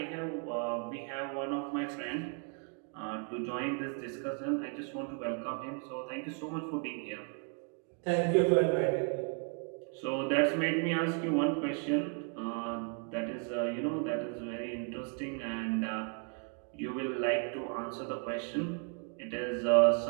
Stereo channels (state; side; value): quieter; left; 39.7 dB